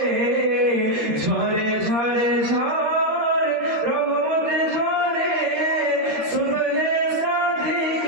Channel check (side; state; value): left; late; 13 ms